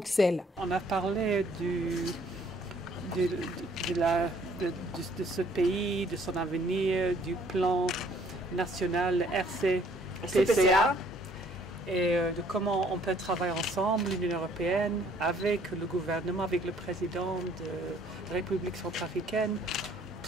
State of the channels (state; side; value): normal; both; correlation 0.61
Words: On a parlé de ce pays, de son avenir, du plan national RCPCA et de comment on peut travailler ensemble, l'Union européenne, avec le gouvernement, avec le président de la République centrafricaine,